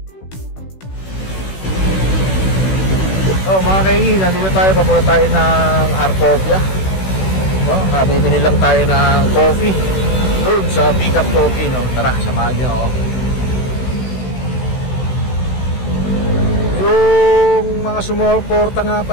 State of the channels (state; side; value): late; right; 16 ms